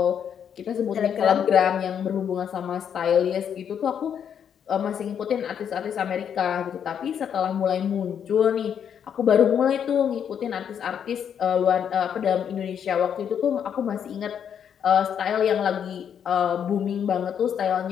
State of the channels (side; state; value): right; quieter; 8.3 dB